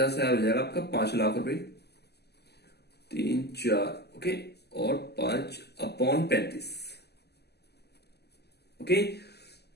हो जाएगा आपका 5 लाख रुपए, 3 4, ओके, और 5/35। ओके,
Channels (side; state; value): right; late; 0.48 ms